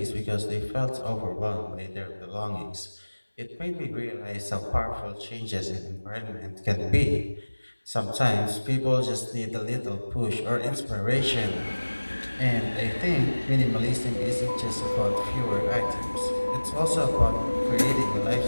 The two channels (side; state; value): both; inverted; correlation -1.00